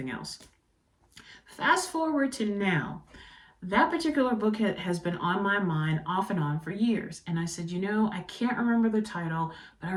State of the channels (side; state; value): both; identical; correlation 1.00